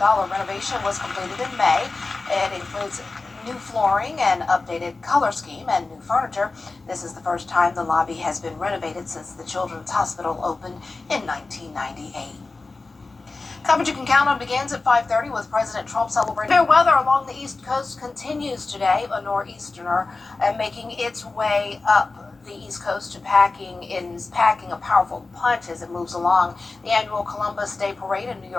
was completed in May. It includes new flooring and updated color scheme and new furniture. This is the first time the lobby has been renovated since the Children's Hospital opened in 1998. Coverage you can count on begins at 5:30 with President Trump celebrating. Fair weather along the East Coast continues today. A nor'easter making its way up the East Coast to packing a powerful punch as it moves along. The annual Columbus Day Parade in New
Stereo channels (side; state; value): right; quieter; 3.7 dB